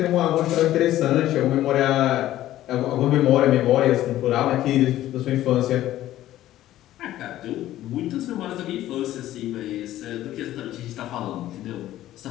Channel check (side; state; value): right; quieter; 13.9 dB